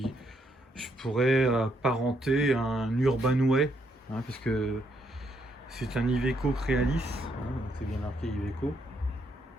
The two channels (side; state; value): both; normal; correlation 0.74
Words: je pourrais apparenter à un Urbanway, parce que c'est un Iveco Crealis, c'est bien marqué